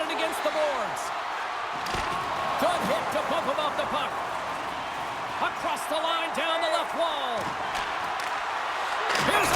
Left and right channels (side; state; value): both; identical; correlation 1.00